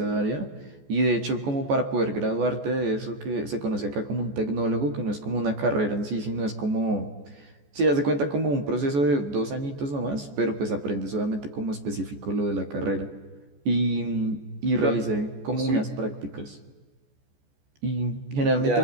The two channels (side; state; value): left; late; 14 ms